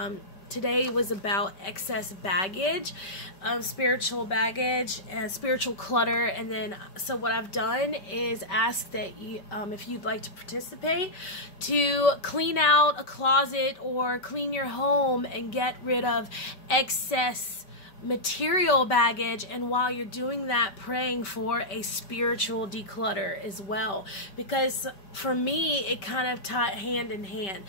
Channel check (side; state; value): right; late; 5.2 ms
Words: today was about excess baggage, spiritual baggage and spiritual clutter. And then, so what I've done is ask that you, if you'd like to participate, to clean out a closet or clean your home and get rid of excess material baggage, and while you're doing that, praying for a spiritual declutter as well, because for me it kind of tied hand in hand.